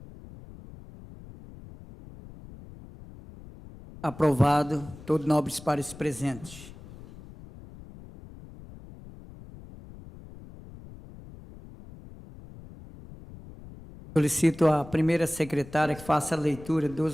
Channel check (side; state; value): left; noise; rumble, 18 dB below the sound